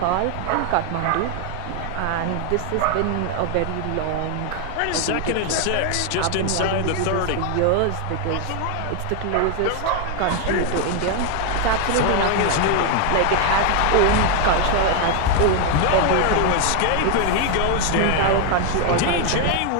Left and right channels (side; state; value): both; different; correlation 0.01